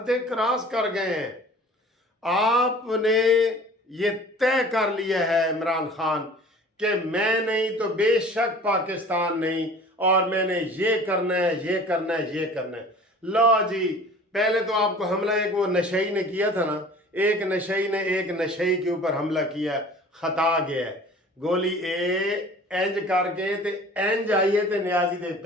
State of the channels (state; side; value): normal; both; correlation 0.45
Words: क्रॉस कर गए हैं। आपने ये तय कर लिया है इमरान खान कि मैं नहीं तो बेशक पाकिस्तान नहीं, और मैंने ये करना है, ये करना है, ये करना है। लो जी, पहले तो आपको हमला एक वो नशई ने किया था ना, एक नशई ने एक नशई के ऊपर हमला किया, खता गया है। गोली इंज करके ते इंज आई है ते नियाजी दे